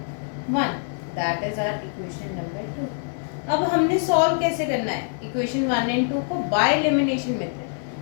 1। That is our equation number 2। अब हमने solve कैसे करना है इक्वेशन 1 एंड 2 को, by elimination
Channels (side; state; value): right; silent; digital silence